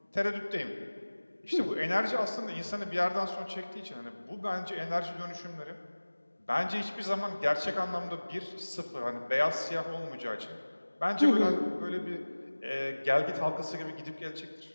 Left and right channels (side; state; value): both; inverted; correlation -1.00